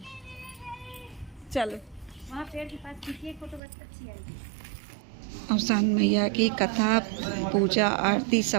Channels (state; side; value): drops out; left; at 3.6 s